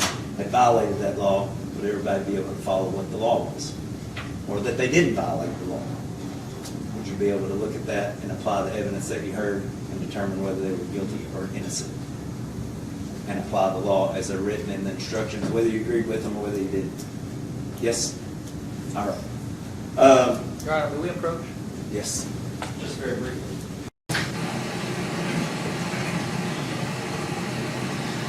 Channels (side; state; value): both; identical; correlation 1.00